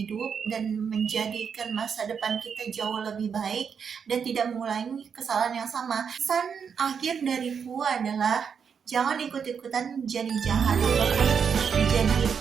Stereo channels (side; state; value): left; quieter; 6.8 dB